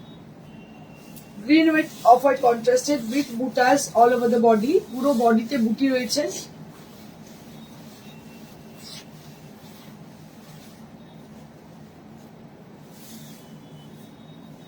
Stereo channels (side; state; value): both; identical; correlation 1.00